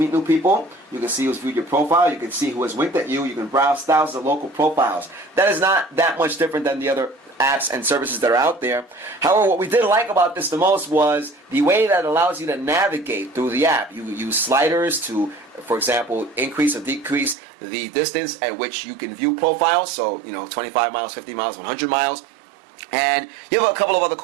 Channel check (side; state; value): left; drops out; at 17.4 s